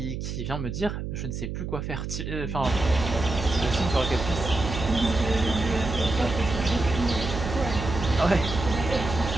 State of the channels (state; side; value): noise; right; hum, 5 dB below the sound